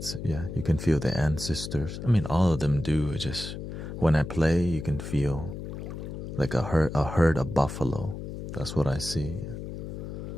yeah, you can feel the ancestors. I mean, all of them do. It's just when I play, you can feel like a herd of buffalo. That's what I see.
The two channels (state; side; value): noise; left; hum, 8 dB below the sound